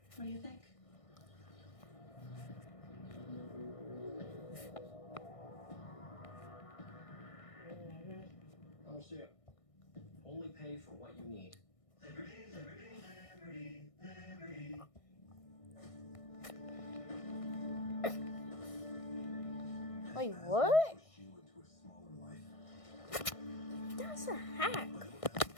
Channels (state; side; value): late; right; 1.6 ms